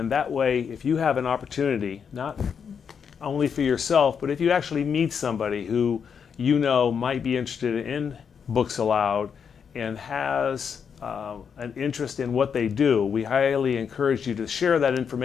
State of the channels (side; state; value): right; quieter; 6.9 dB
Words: that way, if you have an opportunity, not only for yourself, but if you actually meet somebody who you know might be interested in Books Aloud and has an interest in what they do, we highly encourage you to share that